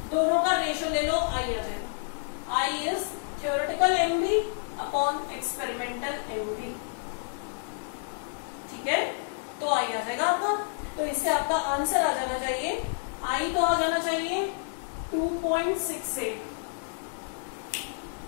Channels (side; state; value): right; silent; digital silence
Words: दोनों का रेशो ले लो, आई आ जाएगा। I is theoretical MB upon experimental MB, ठीक है। तो आई आ जाएगा आपका। तो इससे आपका आंसर आ जाना चाहिए, आई तो आ जाना चाहिए